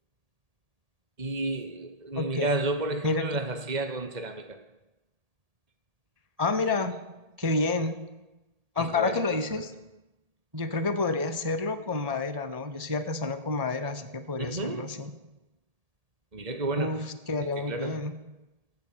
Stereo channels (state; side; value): late; left; 1.8 ms